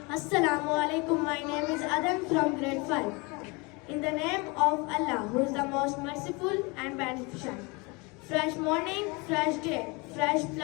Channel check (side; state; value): right; quieter; 27.8 dB